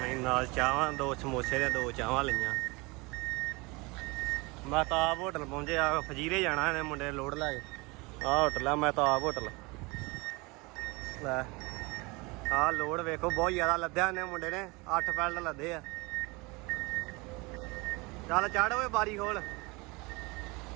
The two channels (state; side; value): quieter; left; 25.8 dB